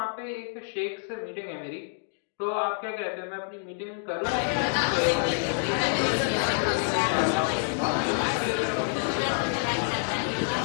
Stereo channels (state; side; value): silent; right; 60 dB below the other